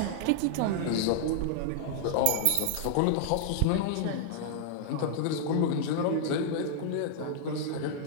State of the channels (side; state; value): both; different; correlation -0.01